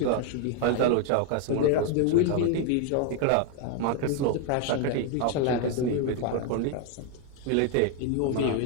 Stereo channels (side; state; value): both; different; correlation 0.01